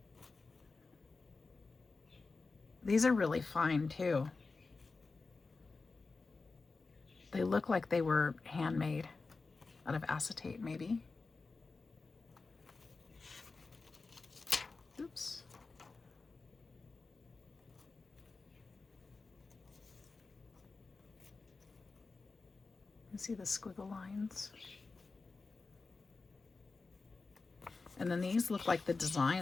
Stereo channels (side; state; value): right; quieter; 4.0 dB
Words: These are really fine too. They look like they were handmade out of acetate, maybe. Oops. You see the squiggle lines? And then these look like the